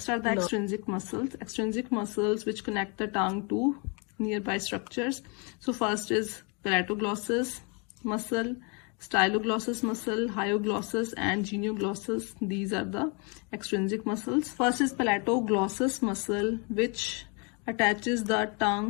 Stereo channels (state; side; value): quieter; right; 33.4 dB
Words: are the extrinsic muscles. Extrinsic muscles which connect the tongue to nearby structures. So first is palatoglossus muscle, styloglossus muscle, hyoglossus and genioglossus. These are the extrinsic muscles. First is palatoglossus muscle, which attaches the